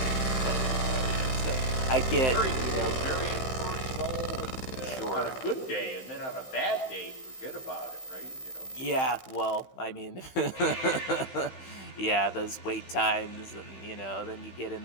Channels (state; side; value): late; right; 15 ms